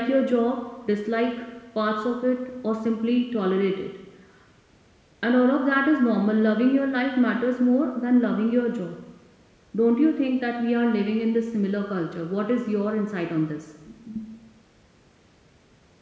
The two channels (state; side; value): identical; both; correlation 1.00